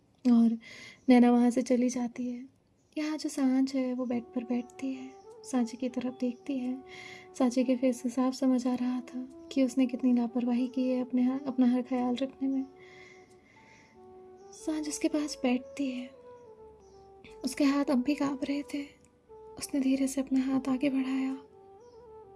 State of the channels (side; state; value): both; identical; correlation 1.00